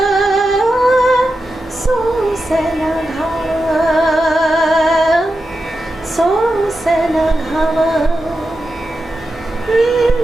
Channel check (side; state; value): both; normal; correlation 0.90